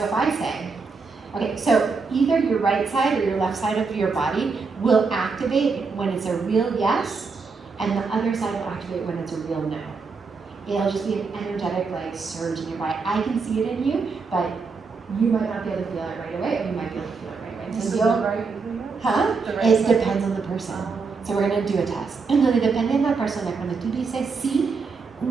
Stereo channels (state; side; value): quieter; left; 4.7 dB